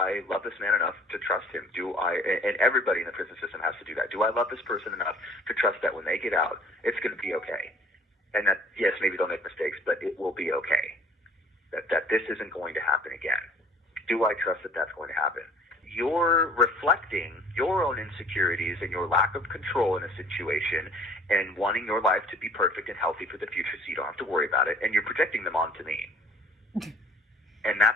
love this man enough to trust him? And everybody in the prison system has to do that. Do I love this person enough to trust that when they get out, it's going to be okay? And that, yes, maybe they'll make mistakes, but it will be okay. That this isn't going to happen again. Do I trust that that's going to happen? you're reflecting your own insecurities and your lack of control in a situation and wanting your life to be perfect and healthy for the future so you don't have to worry about it, and you're projecting them onto me. And that's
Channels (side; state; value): both; normal; correlation 0.52